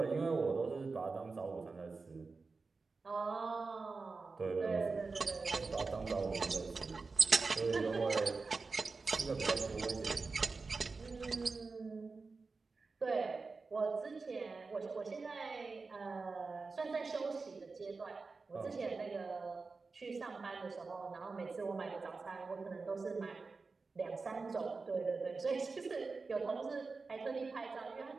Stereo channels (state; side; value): quieter; left; 4.2 dB